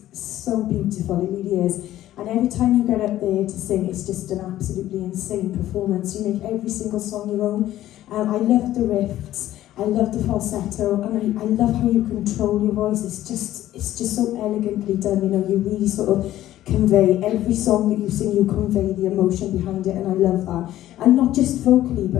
so beautiful, it really is. And every time you get up there to sing, it's just an absolutely insane performance. You make every single song your own. I love the riffs, I love the falsetto, and I love how you control your voice. It's just so elegantly done. You know, you really sort of convey every song that you sing. You convey the emotion behind it, and I love that. And not just vocally,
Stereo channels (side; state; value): right; quieter; 13.7 dB